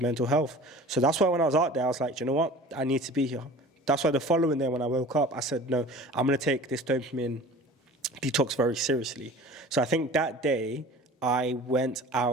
mental health. So that's why when I was out there, I was like, you know what, I need to be here. That's why the following day when I woke up, I said, no, I'm going to take this dopamine detox very seriously. So I think that day I went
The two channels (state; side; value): normal; both; correlation 0.42